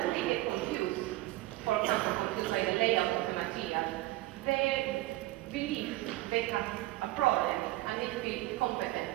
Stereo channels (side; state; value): left; quieter; 18.0 dB